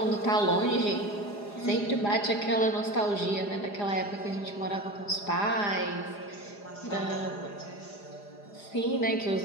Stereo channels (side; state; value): right; late; 4.9 ms